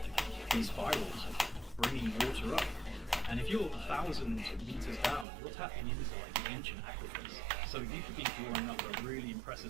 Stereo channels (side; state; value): left; drops out; at 5.2 s